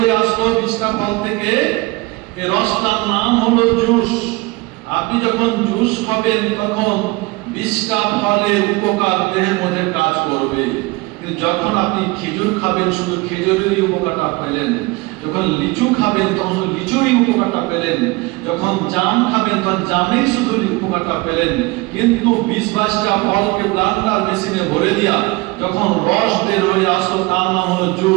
আসলো 20টা ফল থেকে, এই রসটার নাম হলো জুস। আপনি যখন জুস খাবেন তখন 20টা ফলের উপকার দেহের মধ্যে কাজ করবে, কিন্তু যখন আপনি খেজুর খাবেন শুধু খেজুরেরই উপকারটা পেলেন, যখন লিচু খাবেন তখন লিচুরই উপকারটা পেলেন, যখন জাম খাবেন তখন জামের শুধু উপকারটা পেলেন। কিন্তু 20-22টা ফলকে ব্লেন্ডার মেশিনে ভরে দিয়া যখন রস বের হয়ে আসলো তার নাম হলো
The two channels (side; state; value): left; quieter; 23.5 dB